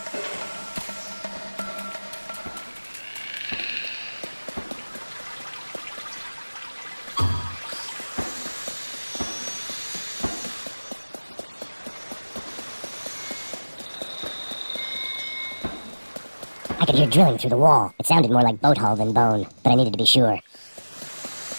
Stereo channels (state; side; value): inverted; both; correlation -1.00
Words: I could hear drilling through the wall. It sounded more like boat hull than bone, but I needed to be sure.